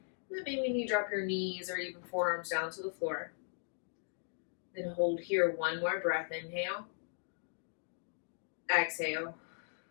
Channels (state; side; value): silent; right; digital silence